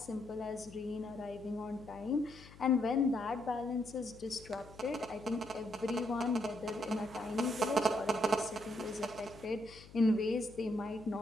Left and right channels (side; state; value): left; noise; hum, 19 dB below the sound